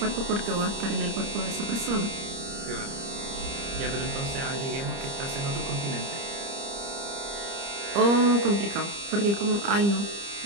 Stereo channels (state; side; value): late; left; 30 ms